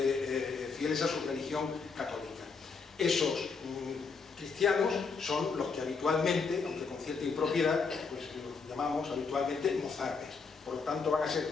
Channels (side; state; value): right; quieter; 5.0 dB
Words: fieles a su religión católica. Esos cristianos son los que habitualmente, aunque con cierta impropiedad, pues los llamamos habitualmente mozárabes. Por lo tanto van a ser